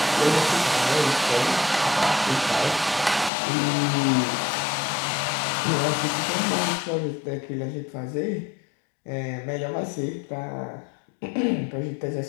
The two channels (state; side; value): drops out; right; at 3.3 s